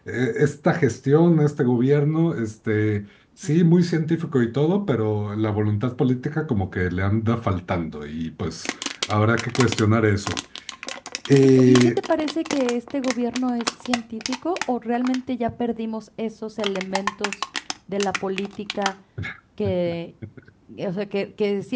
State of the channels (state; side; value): identical; both; correlation 1.00